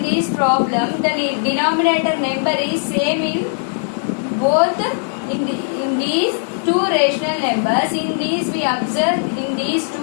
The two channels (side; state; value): right; silent; 59 dB below the other